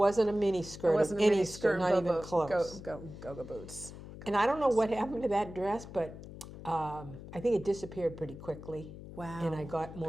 a mini skirt. It wasn't of a any mini skirt. not even close. Go boots. And I don't know what happened to that dress, but I think it disappeared pretty quickly. Wow. And I got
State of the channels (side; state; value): left; noise; hum, 14 dB below the sound